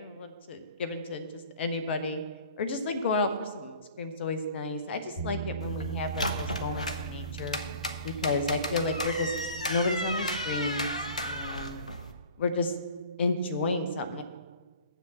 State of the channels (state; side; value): inverted; both; correlation -0.45